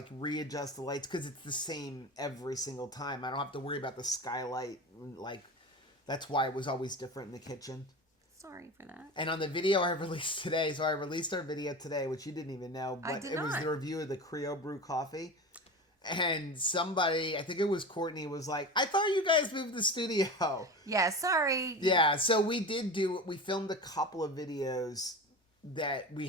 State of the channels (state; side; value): normal; both; correlation 0.29